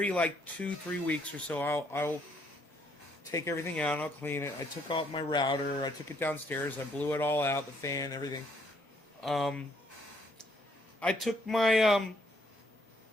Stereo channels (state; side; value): normal; both; correlation 0.69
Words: like 2-3 weeks or so, I'll take everything out and I'll clean it. I took out my router. I took it downstairs. I blew it all out, the fan, everything. I took my